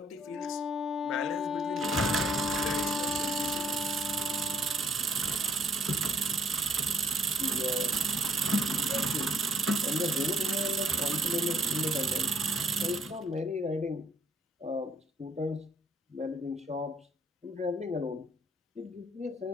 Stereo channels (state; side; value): normal; both; correlation 0.62